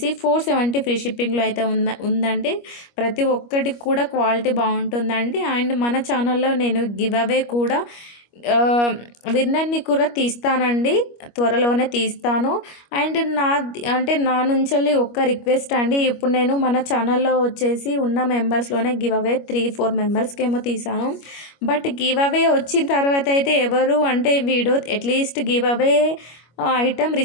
470 ఫ్రీ షిప్పింగ్‌లో అయితే ఉందండి. ప్రతి ఒక్కటి కూడా క్వాలిటీ బాగుంటుందండి. అండ్ మన ఛానల్లో నేను గివ్ అవే కూడా విన్నర్‌ని కూడా తీస్తానండి. త్వరలోనే తీస్తాను. అండ్ నా నుంచెల్లి ఒక్క రిక్వెస్ట్ అండి. ఇప్పుడు నేను మన ఛానల్లో వచ్చేసి ఉన్న మెంబర్స్‌లోనే గివ్ అవే 3, 4 మెంబర్స్‌కేమో తీసాను. బట్ గివ్ అవే వచ్చిన తర్వాత అయితే ఎవరు అంటే video at least give away item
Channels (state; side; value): late; right; 25 ms